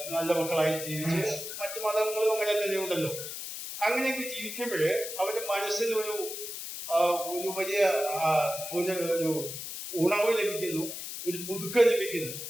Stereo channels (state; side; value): noise; left; hiss, 7 dB below the sound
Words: നല്ല മക്കളായി ജീവിച്ച്, മറ്റു മതങ്ങളും അങ്ങനെ തന്നെ ഉണ്ടല്ലോ, അങ്ങനെയൊക്കെ ജീവിക്കുമ്പോഴ് അവരുടെ മനസ്സിൽ ഒരു വലിയ ഒരു ഉണർവ് ലഭിക്കുന്നു, ഒരു പുതുക്കം ലഭിക്കുന്നു.